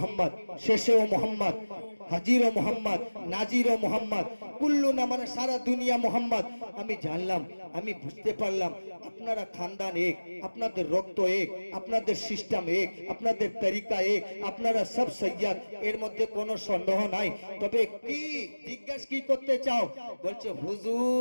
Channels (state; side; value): inverted; both; correlation -1.00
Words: শেষেও মুহাম্মদ, হাজিরও মুহাম্মদ, নাজিরও মুহাম্মদ, কুল্লু না মানে সারা দুনিয়া মুহাম্মদ। আমি জানলাম, আমি বুঝতে পারলাম আপনারা খানদান এক, আপনাদের রক্ত এক, আপনাদের সিস্টেম এক, আপনাদের তরিকা এক, আপনারা সব সৈয়দ, এর মধ্যে কোনো সন্দেহ নাই। তবে কি জিজ্ঞাসা কি করতে চাও? বলছে